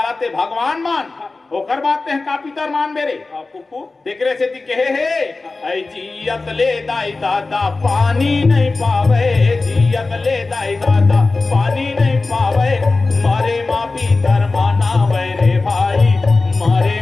ते भगवान मान ओकर बात ते का पितर मान मेरे फुफू तेकरे से ती कहे है ऐ जियत ले दाई दादा पानी नहीं पावे जियत ले दाई दादा पानी नहीं पावे मारे माँ पितर मानावे रे भाई मारे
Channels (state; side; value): quieter; right; 3.6 dB